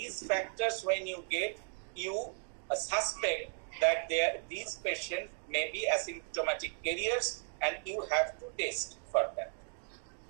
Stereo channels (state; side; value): silent; left; 54 dB below the other